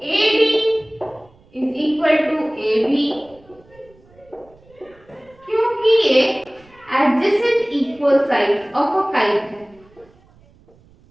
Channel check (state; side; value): noise; right; rumble, 29 dB below the sound